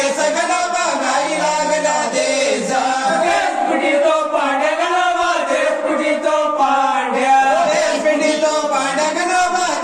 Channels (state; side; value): identical; both; correlation 1.00